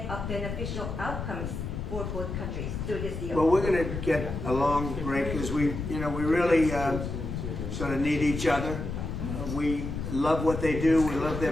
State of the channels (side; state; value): left; noise; rumble, 5 dB below the sound